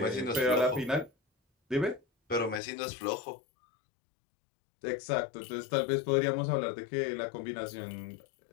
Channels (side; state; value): right; drops out; at 2.6 s